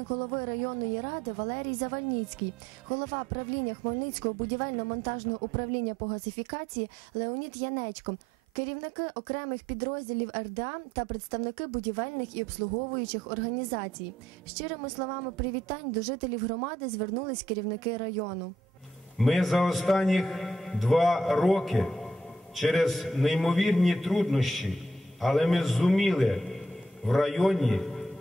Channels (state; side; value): normal; both; correlation 0.71